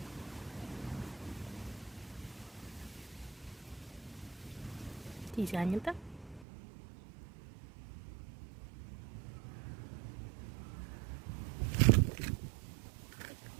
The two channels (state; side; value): drops out; left; at 6.5 s